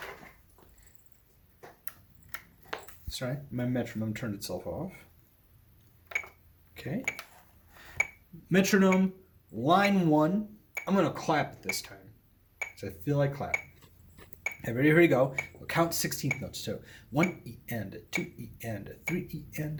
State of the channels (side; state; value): both; identical; correlation 1.00